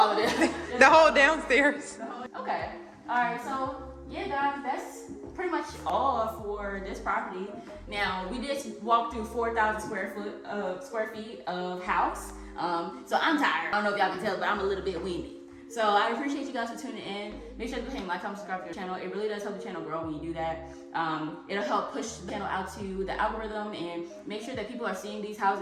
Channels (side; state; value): both; identical; correlation 1.00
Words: of it. The whole downstairs. Okay. All right. So yeah, guys, that's pretty much all for this property. Now we just walked through 4,000 square feet of house. So I'm tired. I don't know if y'all can tell, but I'm a little bit winded. So I appreciate you guys for tuning in. Make sure to go ahead and like, comment, subscribe to the channel. It really does help the channel grow when you do that. It'll help push the channel out to the algorithm and make sure that people are seeing these